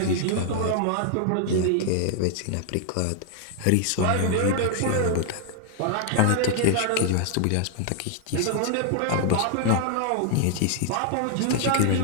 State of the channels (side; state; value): both; different; correlation 0.00